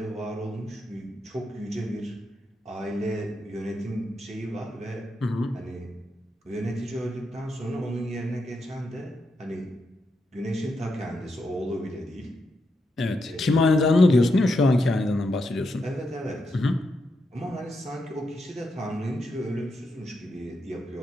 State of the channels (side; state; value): both; normal; correlation 0.83